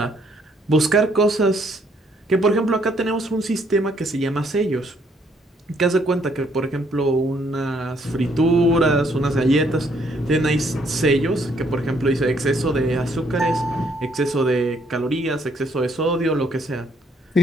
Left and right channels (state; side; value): normal; both; correlation 0.68